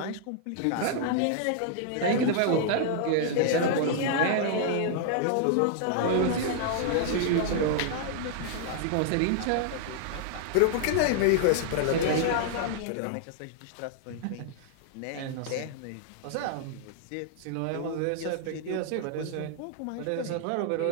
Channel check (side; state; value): both; different; correlation -0.01